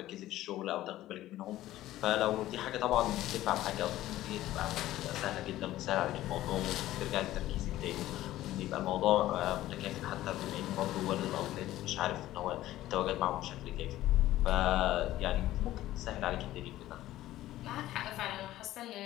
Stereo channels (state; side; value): quieter; right; 14.9 dB